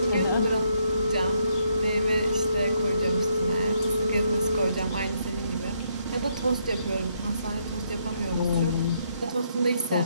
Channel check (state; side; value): inverted; both; correlation -0.74